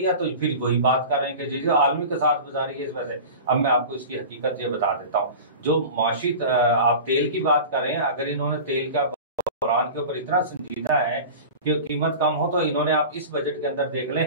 है तो फिर वही बात कर रहे हैं कि जो आलमी के साथ गुजारी है इस वजह से। अब मैं आपको इसकी हकीकत ये बता देता हूँ। जो माशी आप तेल की बात कर रहे हैं, अगर इन्होंने तेल का बहरान के ऊपर इतना संजीदा है कि कीमत कम हो, तो इन्होंने आप इस बजट के अंदर देख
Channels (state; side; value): inverted; both; correlation -0.34